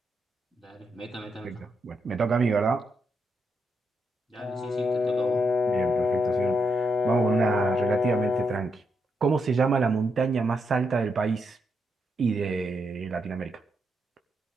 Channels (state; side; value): normal; both; correlation 0.81